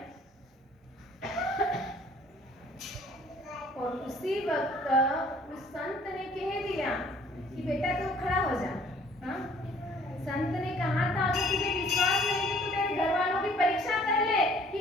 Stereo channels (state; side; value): normal; both; correlation 0.56